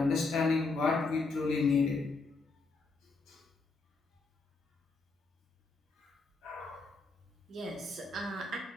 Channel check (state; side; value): quieter; right; 3.8 dB